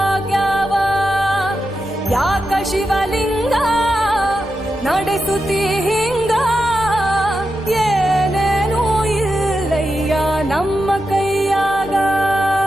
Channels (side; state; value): both; normal; correlation 0.88